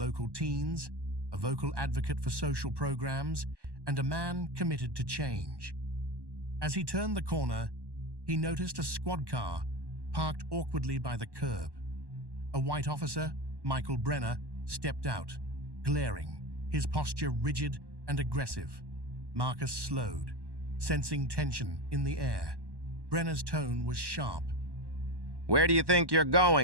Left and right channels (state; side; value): late; left; 1.1 ms